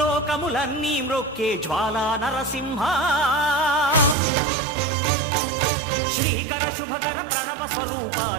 మ్రొక్కే జ్వాలా నరసింహ శ్రీకర శుభకర ప్రణవ స్వరూప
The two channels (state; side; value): drops out; left; at 4.2 s